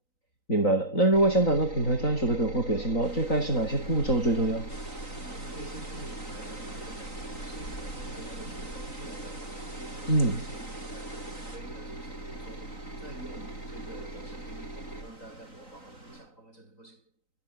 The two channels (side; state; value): right; late; 3.9 ms